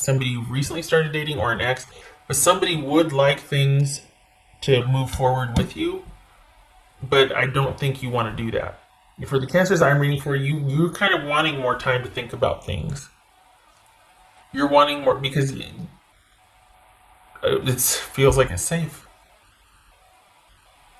who recently started dating or an ex, but somebody would like things to move forward with you, but I don't think you want to do that. For the cancers I'm reading for, you're kind of wanting more time to think about things. You're wanting more because it feels like it's safe.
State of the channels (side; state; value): both; identical; correlation 1.00